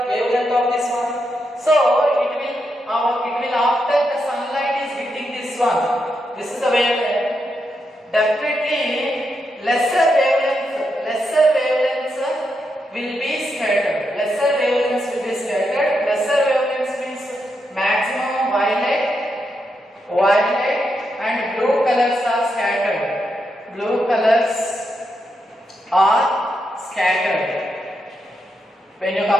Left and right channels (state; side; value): normal; both; correlation 0.83